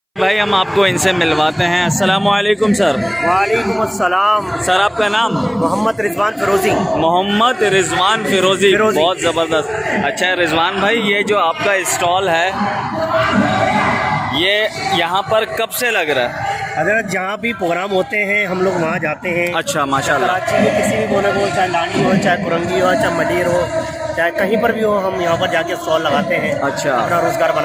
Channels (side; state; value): both; identical; correlation 1.00